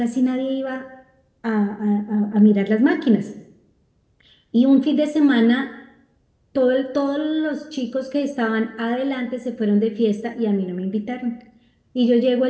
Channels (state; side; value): identical; both; correlation 1.00